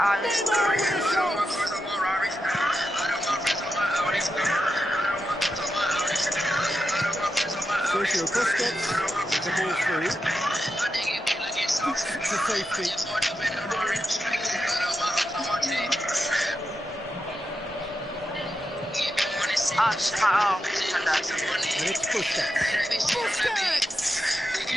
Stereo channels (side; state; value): both; normal; correlation 0.88